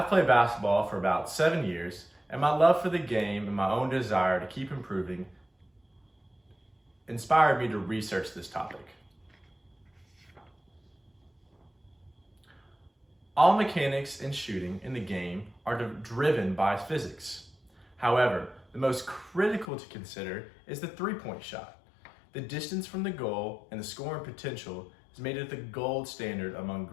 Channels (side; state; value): right; drops out; at 19.7 s